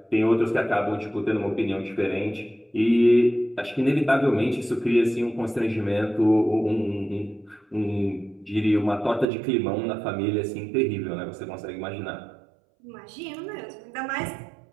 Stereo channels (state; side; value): drops out; left; at 9.2 s